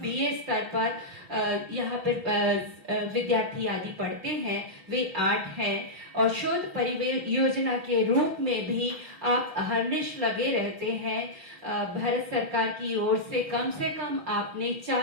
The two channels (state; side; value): late; left; 6.0 ms